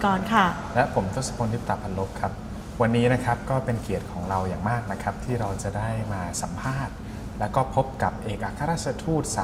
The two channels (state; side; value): identical; both; correlation 1.00